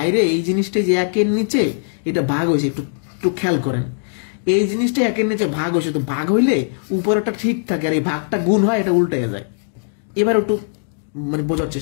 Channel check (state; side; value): silent; right; digital silence